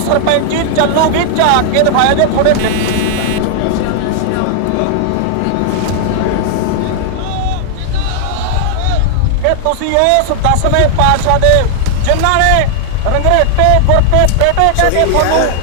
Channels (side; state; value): both; different; correlation -0.01